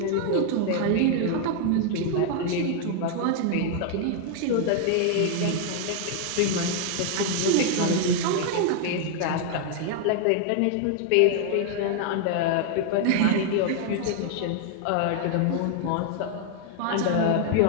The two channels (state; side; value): different; both; correlation 0.00